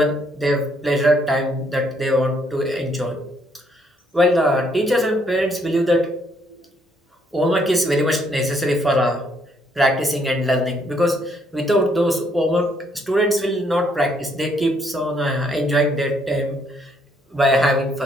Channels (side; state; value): both; normal; correlation 0.70